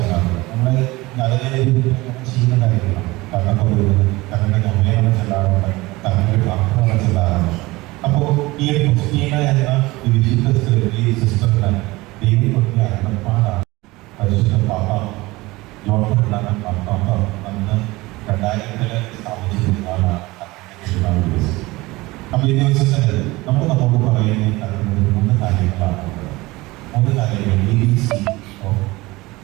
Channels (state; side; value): quieter; left; 21.0 dB